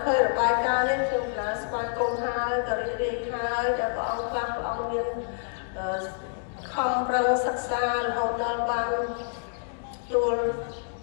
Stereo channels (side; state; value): right; silent; digital silence